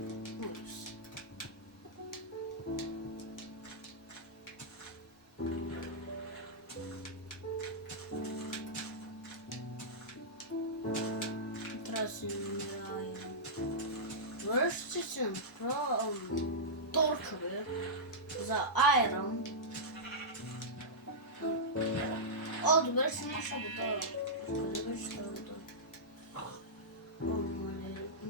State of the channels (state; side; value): normal; both; correlation -0.12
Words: Връща се направо торчове за айрон. Добре, ще наша вода. Къде беше тази вода?